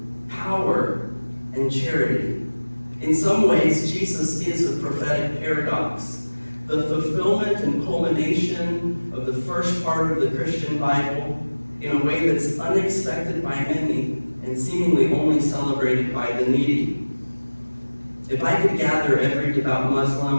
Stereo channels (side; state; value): both; inverted; correlation -1.00